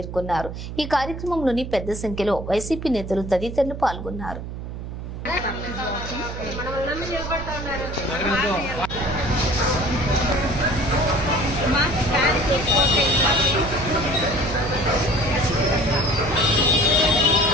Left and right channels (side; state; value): right; noise; hum, 8 dB below the sound